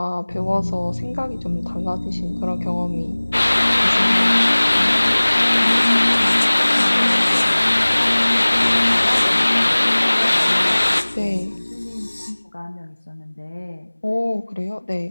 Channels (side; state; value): both; inverted; correlation -1.00